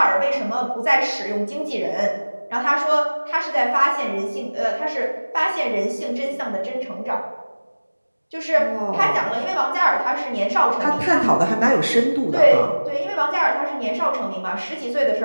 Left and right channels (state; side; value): inverted; both; correlation -1.00